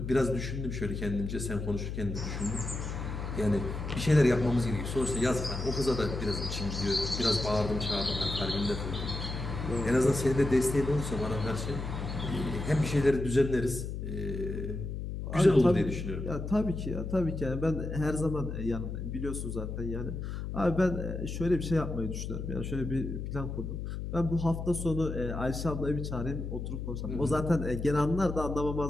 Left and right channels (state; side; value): noise; left; hum, 5 dB below the sound